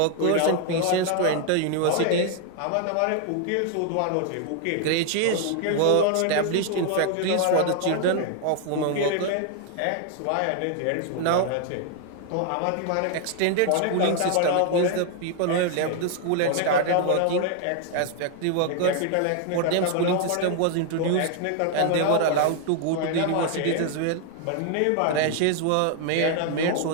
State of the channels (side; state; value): both; different; correlation 0.00